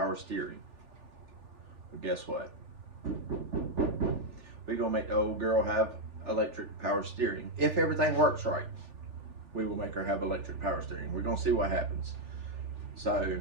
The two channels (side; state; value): left; late; 3.4 ms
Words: steering. But guess what? We're going to make the old girl have electric power steering. If everything works right, we will make her have electric power steering. We're going to see what happens. So